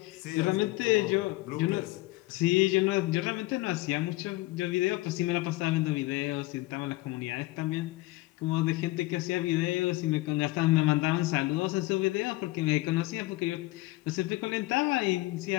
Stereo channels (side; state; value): right; quieter; 20.0 dB